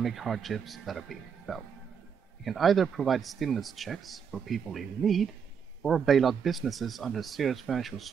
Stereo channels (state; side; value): quieter; left; 7.1 dB